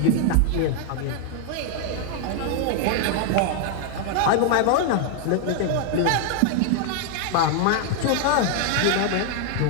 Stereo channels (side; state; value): both; different; correlation 0.00